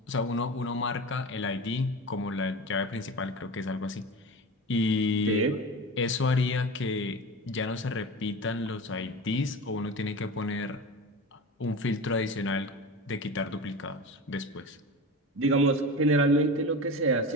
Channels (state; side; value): normal; both; correlation 0.29